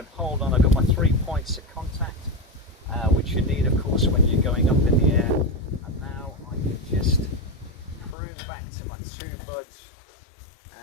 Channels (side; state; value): right; drops out; at 8.2 s